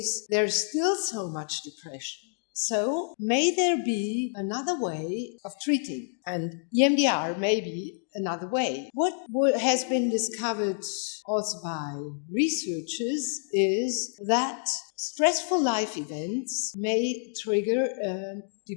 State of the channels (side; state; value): right; silent; digital silence